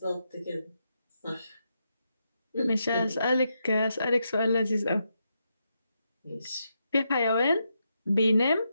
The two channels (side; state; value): both; inverted; correlation -0.83